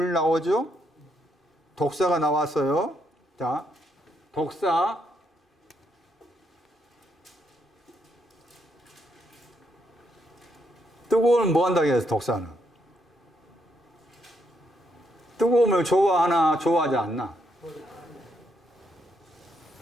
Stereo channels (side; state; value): both; normal; correlation 0.76